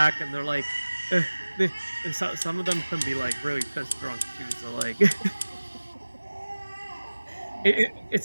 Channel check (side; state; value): both; inverted; correlation -1.00